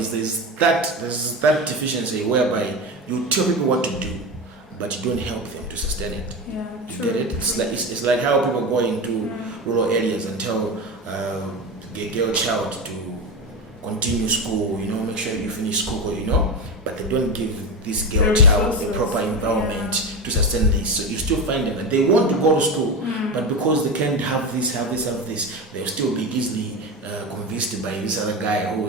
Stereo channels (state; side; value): normal; both; correlation 0.21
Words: there's that deficiency whereby you tell people what to do, but you don't help them to sustain it. Yeah, you true. get it? It's like how people go into rural areas and tell the girl child to continue school, make sure you finish school, but they don't give this girl child the proper environment to sustain this. So you still find them that they want to go to school, but because they can't have this, they'll still be easily convinced by this other guy who